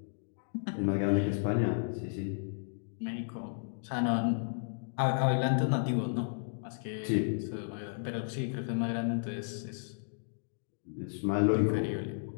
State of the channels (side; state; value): right; silent; digital silence